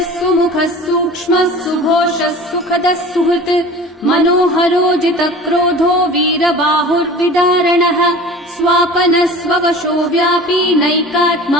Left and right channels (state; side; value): normal; both; correlation 0.40